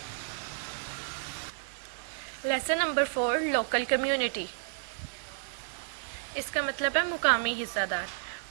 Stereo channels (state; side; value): silent; left; digital silence